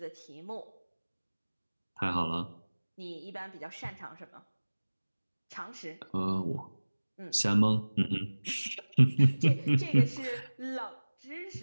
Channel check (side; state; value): both; inverted; correlation -1.00